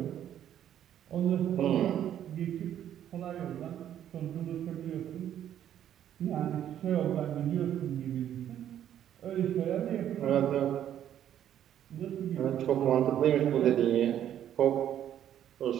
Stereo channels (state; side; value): quieter; left; 10.6 dB